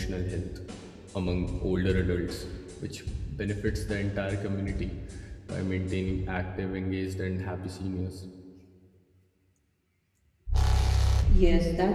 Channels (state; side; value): identical; both; correlation 1.00